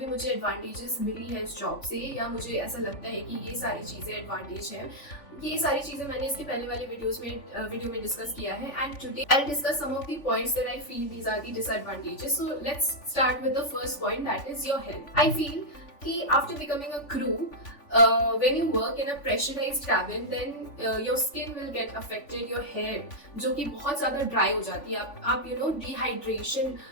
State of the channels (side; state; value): right; late; 3.5 ms